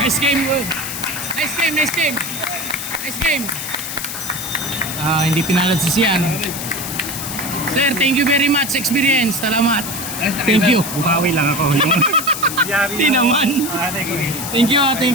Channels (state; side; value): noise; left; hiss, 6 dB below the sound